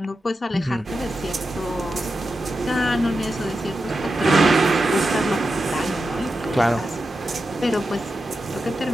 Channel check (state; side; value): normal; both; correlation 0.90